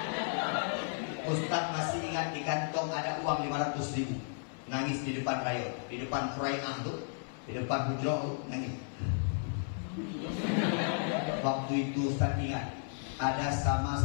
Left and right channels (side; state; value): right; silent; 55 dB below the other